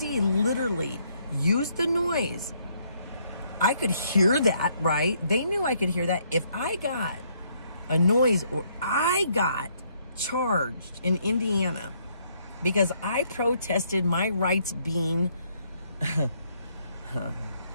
literally used the noise. I could hear that, right? They knew I could hear that. If I got a noise, or I got charged in Indiana because I protested my rights being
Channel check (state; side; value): inverted; both; correlation -0.69